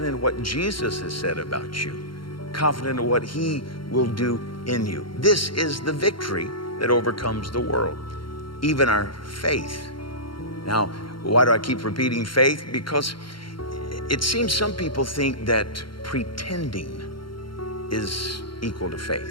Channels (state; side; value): late; right; 0.73 ms